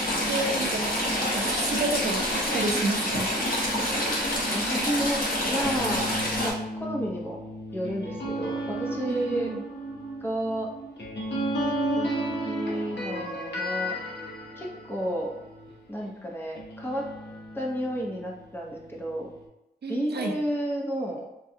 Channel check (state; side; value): normal; both; correlation 0.51